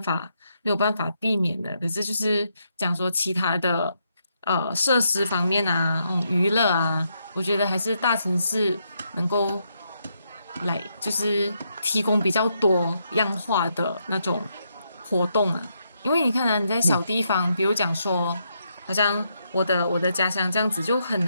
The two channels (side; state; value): both; inverted; correlation -0.79